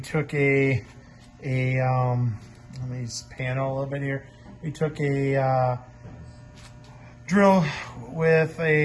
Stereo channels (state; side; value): identical; both; correlation 1.00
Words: let me just pan out a little bit here. We took a drill with